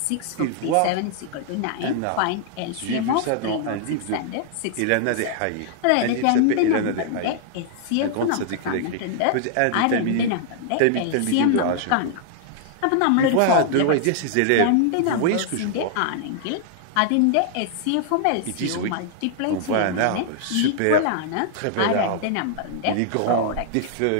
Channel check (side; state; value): both; different; correlation -0.01